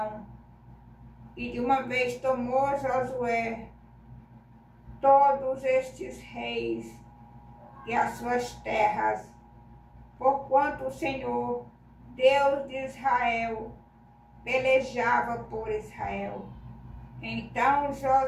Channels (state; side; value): identical; both; correlation 1.00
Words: E de uma vez tomou Josué todos estes reis e as suas terras, porquanto o Senhor, Deus de Israel, pelejava por Israel. Então